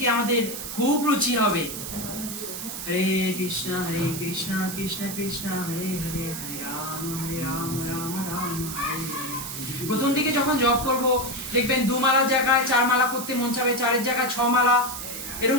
আমাদের খুব রুচি হবে। হরে কৃষ্ণ কৃষ্ণ কৃষ্ণ হরে হরে, হরে রাম রাম রাম হরে হরে। প্রথম দিকে যখন জপ করব দেখবেন 2 মালার জায়গায় 4 মালা করতে মন চাবে, 4-এর জায়গায় 6 মালা,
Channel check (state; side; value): noise; right; hiss, 7 dB below the sound